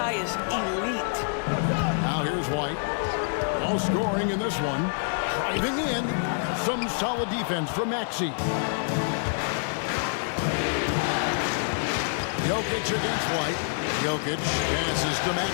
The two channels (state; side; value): silent; right; digital silence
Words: is elite. Now here's White. No scoring in this one. Driving in. Some solid defense from Maxey. Jokic against White. Jokic passes to